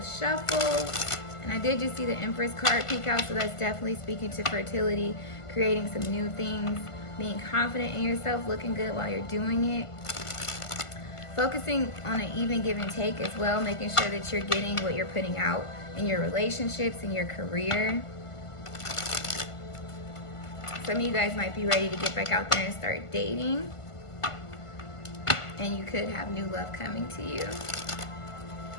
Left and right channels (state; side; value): late; right; 1.5 ms